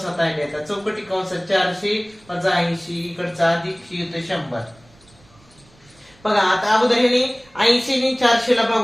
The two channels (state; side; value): noise; right; rumble, 29 dB below the sound